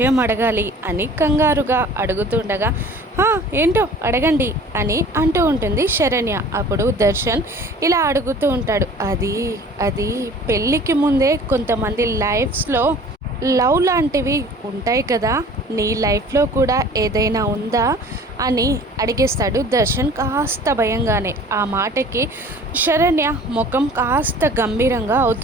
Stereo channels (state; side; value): normal; both; correlation 0.47